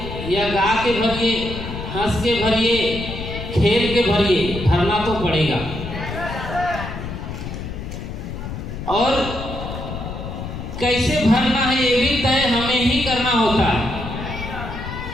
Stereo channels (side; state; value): left; noise; rumble, 8 dB below the sound